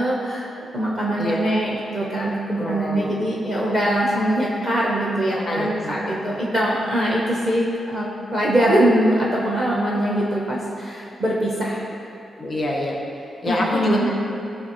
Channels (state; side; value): normal; both; correlation 0.82